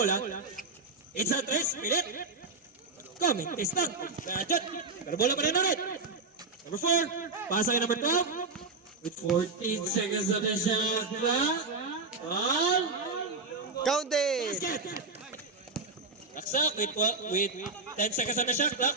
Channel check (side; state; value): left; quieter; 3.7 dB